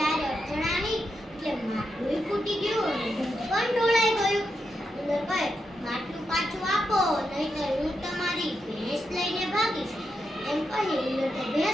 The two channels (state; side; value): normal; both; correlation 0.85